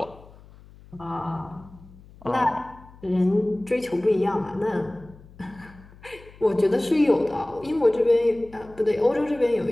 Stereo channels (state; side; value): noise; left; hum, 22 dB below the sound